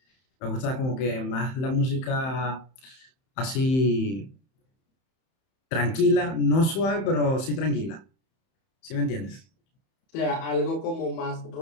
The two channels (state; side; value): late; right; 31 ms